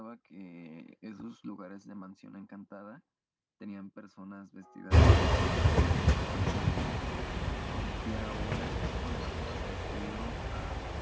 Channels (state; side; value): identical; both; correlation 1.00